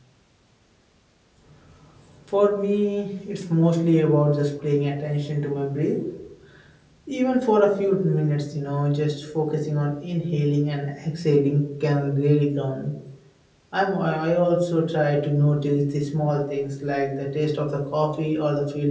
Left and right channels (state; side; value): identical; both; correlation 1.00